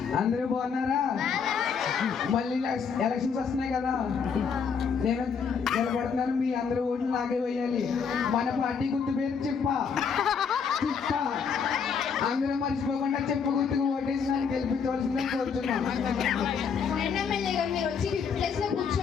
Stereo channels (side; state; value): right; quieter; 6.3 dB